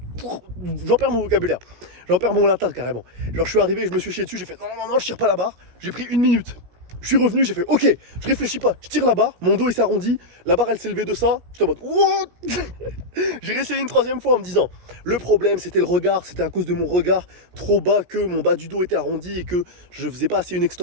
J'en perds mon vocabulaire. J'en perds mon latin carrément. Genre, je suis arrivé, je me suis chié dessus, j'ai fait non, je tire pas la barre. J'ai pris 1 minute. Je suis revenu, j'ai fait ok, je réfléchis pas, je tire la barre, mon dos il s'est arrondi, la barre elle s'est levée de ça, j'étais en mode what. J'ai réessayé une 3e fois en me disant le problème c'était le regard, c'était à cause de mon regard trop bas que mon bas du dos était arrondi et que je faisais pas assez une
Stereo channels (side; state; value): left; late; 17 ms